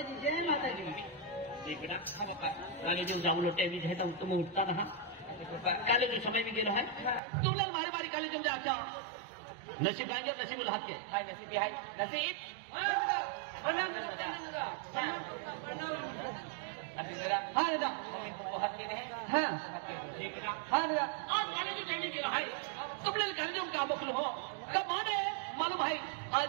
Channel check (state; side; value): drops out; left; at 7.2 s